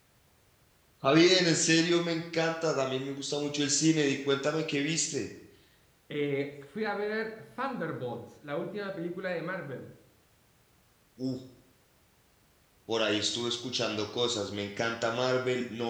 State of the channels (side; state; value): both; identical; correlation 1.00